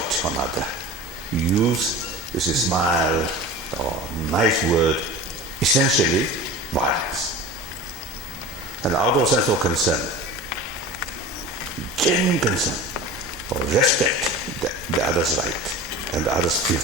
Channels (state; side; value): normal; both; correlation 0.35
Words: another, use is a smile or nice word, essentially violence. And out of sense of concern, genuine concern, or respect the other's right and the other's